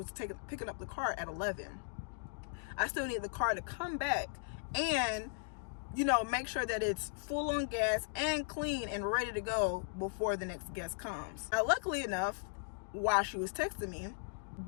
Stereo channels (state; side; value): silent; right; digital silence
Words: picking up the car at 11. I still need the car to come back and, you know, make sure that it's full on gas and clean and ready to go before the next guest comes. Now, luckily enough, while she was texting me,